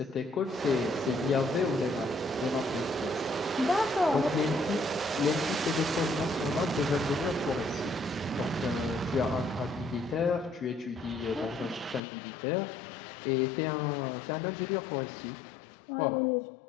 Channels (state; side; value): drops out; right; at 12.0 s